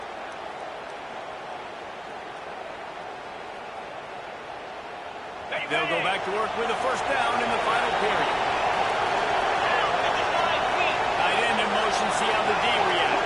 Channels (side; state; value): both; identical; correlation 1.00